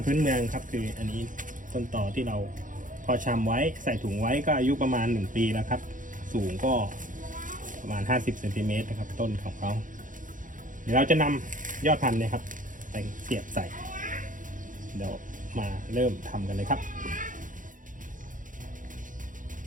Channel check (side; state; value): left; late; 0.38 ms